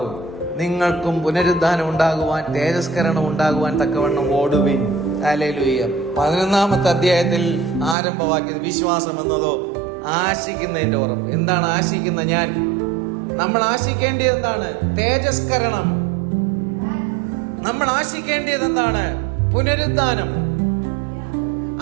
നിങ്ങൾക്കും പുനരുദ്ധാനം ഉണ്ടാകുവാൻ, തേജസ്കരണം ഉണ്ടാകുവാൻ തക്കവണ്ണം ഓടുവിൻ. ഹല്ലേലൂയ. 11-ാമത്തെ അധ്യായത്തിൽ ആരംഭവാക്യം, വിശ്വാസം എന്നതോ ആശിക്കുന്നതിന്റെ ഉറപ്പ്. എന്താണ് ആശിക്കുന്ന? നമ്മൾ ആശിക്കേണ്ടത് എന്താണ്? തേജസ്കരണം. നമ്മൾ ആശിക്കേണ്ടത് എന്താണ്? പുനരുദ്ധാനം.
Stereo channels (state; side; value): drops out; left; at 8.0 s